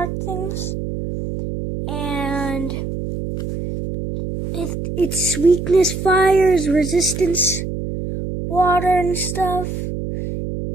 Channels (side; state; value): right; noise; hum, 5 dB below the sound